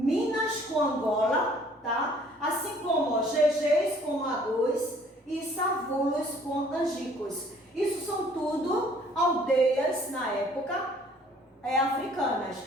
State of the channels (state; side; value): normal; both; correlation 0.57